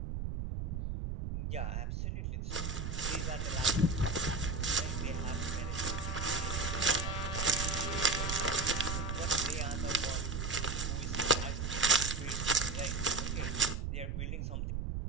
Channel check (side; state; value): right; noise; rumble, 2 dB below the sound